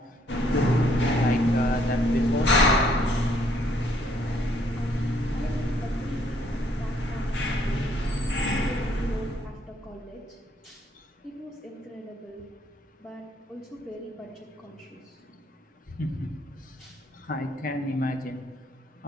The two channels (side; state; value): both; normal; correlation 0.67